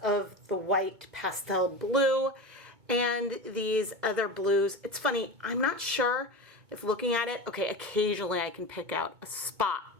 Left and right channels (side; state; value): left; late; 2.2 ms